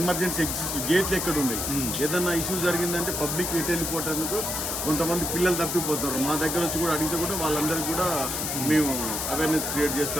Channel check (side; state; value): left; noise; hiss, 2 dB below the sound